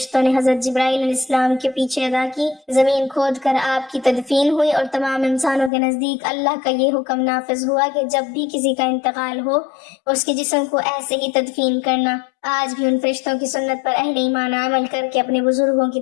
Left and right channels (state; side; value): drops out; right; at 5.7 s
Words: نے حضرت جبرائیل علیہ السلام کے پیچھے ادا کی۔ زمین کھود کر آپ کی تدفین ہوئی اور تمام انسانوں کے نزدیک اللہ کا یہ حکم نافذ ہوا کہ جب بھی کسی کا انتقال ہو اس کے جسم کو ایسے ہی تدفین کرنا۔ آج بھی ان فرشتوں کی سنت پر اہل ایمان عمل کر کے اپنے بزرگوں کی